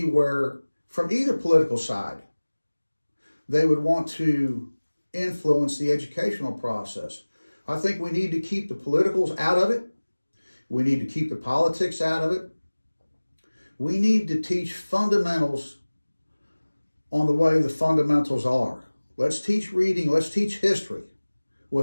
where, from either political side, they would want to influence the educational process. I think we need to keep the politicals out of it. We need to keep the politics out of it. We need to teach fundamentals on the way the fundamentals are. Let's teach reading, let's teach history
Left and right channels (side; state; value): both; inverted; correlation -1.00